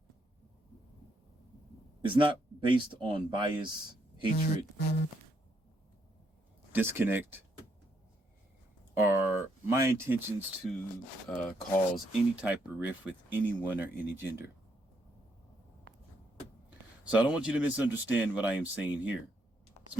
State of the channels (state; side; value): normal; both; correlation 0.75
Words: is not based on bias, hatred, disconnect, or my intentions to cause any type of rift with anyone or any gender. So I don't want you to misunderstand what I am saying here. It's